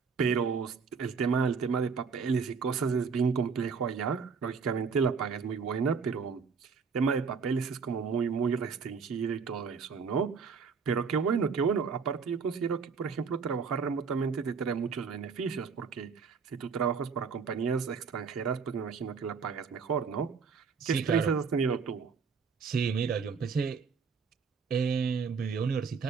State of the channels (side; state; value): left; quieter; 5.6 dB